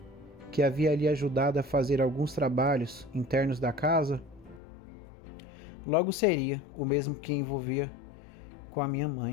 que havia ali ajudado a fazer alguns trabalhos internos da casa, logo seria o mesmo que envolvia com a minha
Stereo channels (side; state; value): right; drops out; at 4.6 s